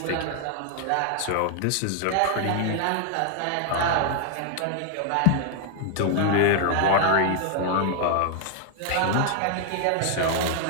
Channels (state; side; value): different; both; correlation 0.00